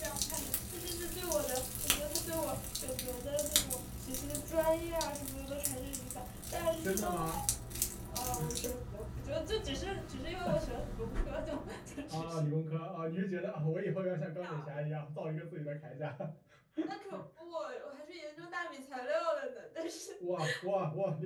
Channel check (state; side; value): identical; both; correlation 1.00